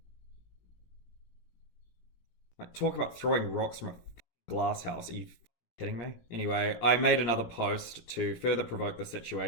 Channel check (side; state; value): right; late; 17 ms